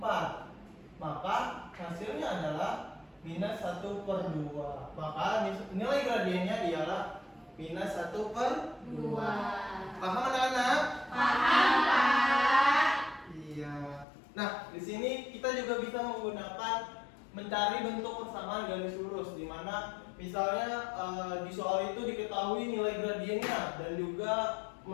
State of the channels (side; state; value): right; drops out; at 14.1 s